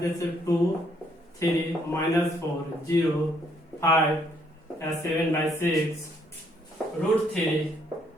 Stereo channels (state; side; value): normal; both; correlation 0.69